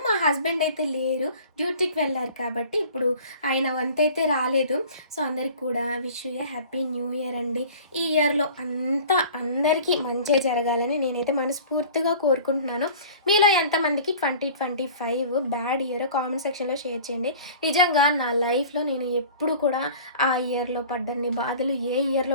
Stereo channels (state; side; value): inverted; both; correlation -0.44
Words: మా హస్బెండ్ అయితే లేరు, డ్యూటీకి వెళ్ళారు కాబట్టి ఇప్పుడు ఆయన వంత అయితే రాలేదు. సో అందరికి కూడా wish you A happy new year అండి. ఈ ఇయర్లో అంతా అందరికీ మంచి జరగాలని నేనైతే మనస్ఫూర్తిగా కోరుకుంటున్నాను. మీలో ఎంతమందికి 2025 బ్యాడ్ ఇయర్ కామెంట్ సెక్షన్లో షేర్ చేయండి. నిజంగా నా లైఫ్లో నేను ఎప్పుడు కూడా ఆ ఇయర్లో పడ్డన్ని బాధలు ఏ